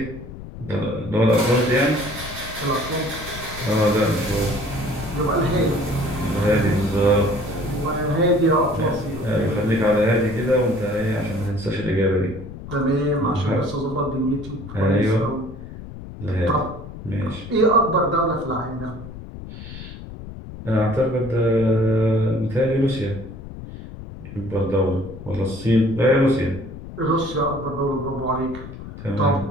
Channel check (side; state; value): left; noise; rumble, 12 dB below the sound